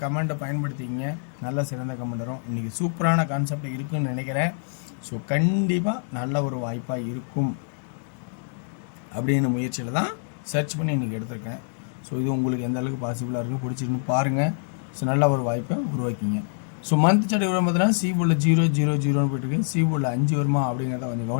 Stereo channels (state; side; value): silent; right; 59 dB below the other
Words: கமெண்ட்டை பயன்படுத்திக்கிங்க. நல்ல சிறந்த கமெண்ட் வரும். இன்றைக்கி சூப்பரான கான்செப்ட் இருக்குதுன்னு நினைக்கிறேன். ஸோ கண்டிப்பாக நல்ல ஒரு வாய்ப்பாக இருக்கும் அப்படின்னு முயற்சியில் தான் சர்ச் பண்ணி இன்றைக்கி எடுத்திருக்கேன். ஸோ இது உங்களுக்கு எந்த அளவுக்கு பாசிபிளாக இருக்குது, பிடிச்சிருக்குன்னு பாருங்கள். ஸோ நல்ல ஒரு வாய்ப்பை உருவாக்கிங்க. ஸோ மந்த் சார்ட் வரும் பார்த்தீங்கன்னா சி போர்டில் 0-0-0ன்னு போயிட்டுருக்கு. சி போர்டில் 5 வருமா அப்படிங்கிறத கொஞ்சம்